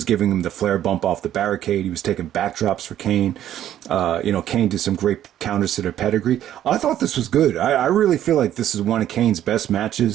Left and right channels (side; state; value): left; quieter; 11.6 dB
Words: giving him the Flair bump off the barricade. He was taking backdrops for Kane. Kane did some great counters to their pedigree. I thought this was good. I really feel like this is one of Kane's best